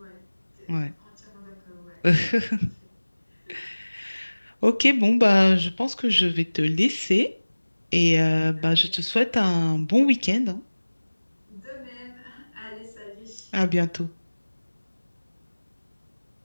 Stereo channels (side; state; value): both; inverted; correlation -1.00